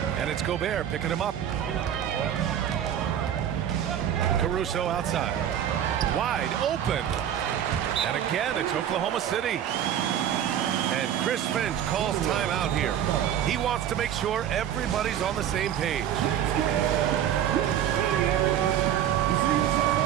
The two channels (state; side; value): quieter; left; 10.1 dB